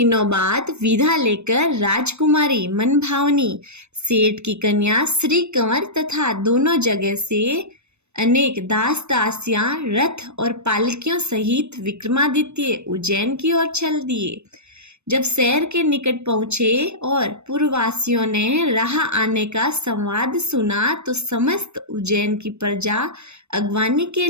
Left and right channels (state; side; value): late; left; 0.81 ms